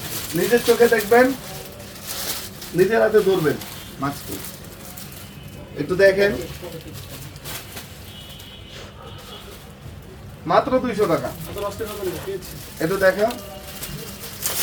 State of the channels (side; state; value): both; identical; correlation 1.00